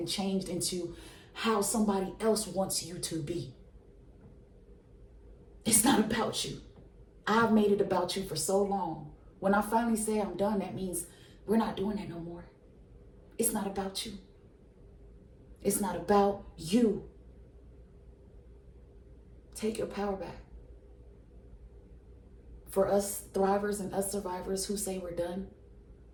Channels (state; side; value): identical; both; correlation 1.00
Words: changed into how somebody else wants you to be. It's not about you. I've made it about you for so long. When I finally say I'm done, that means we're not doing that no more. It's not about you. It's not about you. Take your power back. For us thrivers and us survivors who say we're done,